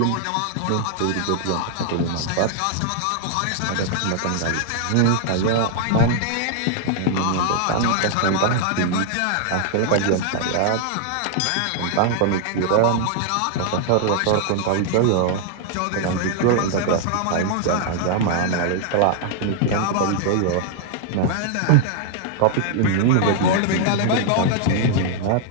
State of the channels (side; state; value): both; different; correlation 0.00